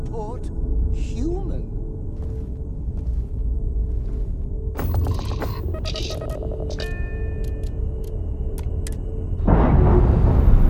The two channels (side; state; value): both; identical; correlation 1.00